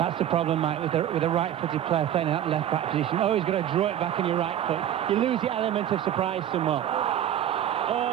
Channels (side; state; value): left; quieter; 10.9 dB